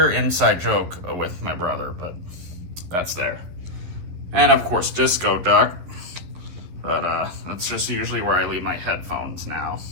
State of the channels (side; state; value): left; late; 12 ms